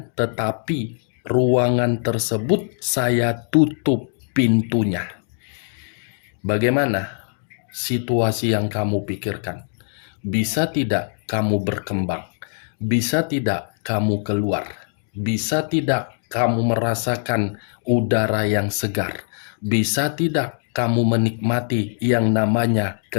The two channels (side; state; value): right; silent; digital silence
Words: tetapi ruangan tersebut saya tutup pintunya. Bagaimana situasi yang kamu pikirkan? Bisa tidak kamu berkembang? Bisa tidak kamu keluar? Bisa tidak kamu merasakan udara yang segar? Bisa tidak kamu menikmati yang namanya